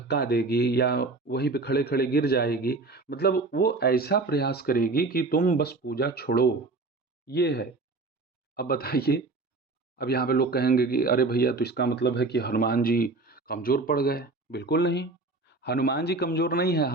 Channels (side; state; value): left; quieter; 3.4 dB